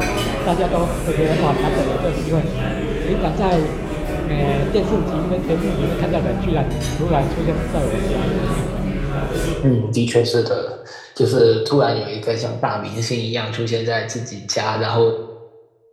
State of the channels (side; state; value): both; identical; correlation 1.00